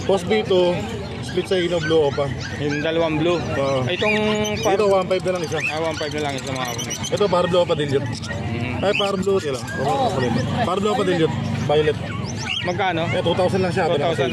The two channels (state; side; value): identical; both; correlation 1.00